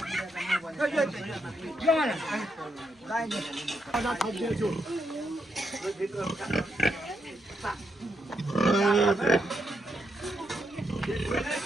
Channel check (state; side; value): normal; both; correlation 0.80